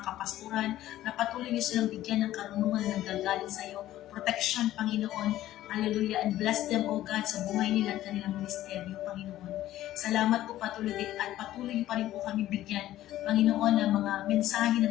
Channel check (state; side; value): quieter; right; 14.0 dB